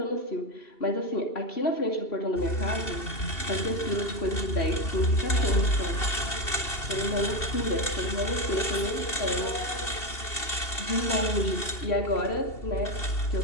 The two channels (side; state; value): right; late; 2.8 ms